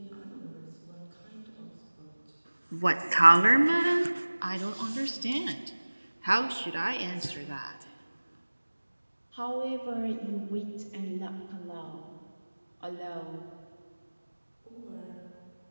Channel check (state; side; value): inverted; both; correlation -1.00